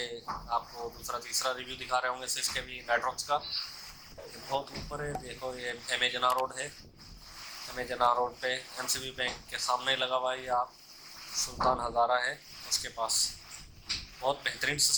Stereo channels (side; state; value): both; identical; correlation 1.00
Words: आपको दूसरा तीसरा रिव्यू दिखा रहे होंगे 6 केवी मैट्रिक्स का। ये बहुत ऊपर है। देखो, ये एमेजना रोड है। एमेजना रोड पे MCB बैंक के सामने लगा हुआ है। ये आप सुल्तान हज़ारा है उसके पास। बहुत बेहतरीन